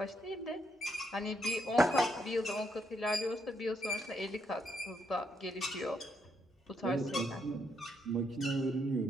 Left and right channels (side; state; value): both; normal; correlation 0.76